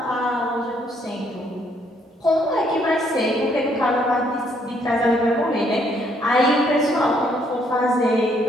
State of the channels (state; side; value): normal; both; correlation 0.69